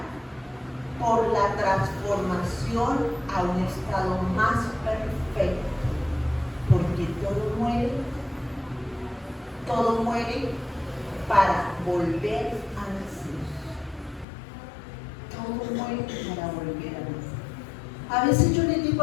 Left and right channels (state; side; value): drops out; right; at 14.2 s